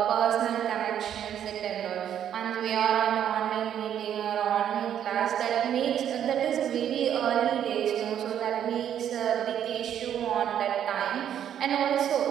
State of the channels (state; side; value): quieter; left; 9.8 dB